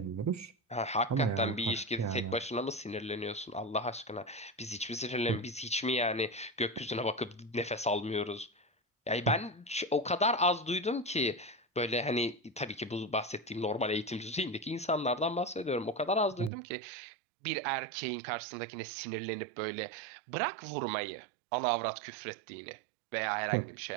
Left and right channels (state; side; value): drops out; left; at 16.5 s